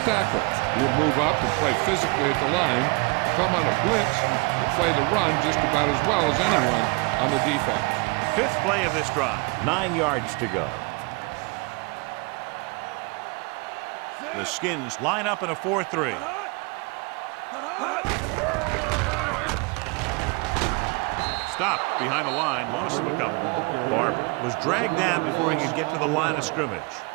tackle. He'll move up and play physically at the line, come on a blitz, and play the run just about as well as anyone on the defense. 5th play of this drive. 9 yards to go. The Skins line up in a 4-3. Stopped behind the line, lost a couple. Barber was dragged down before he could get to the line of scrimmage.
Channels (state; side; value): quieter; left; 29.2 dB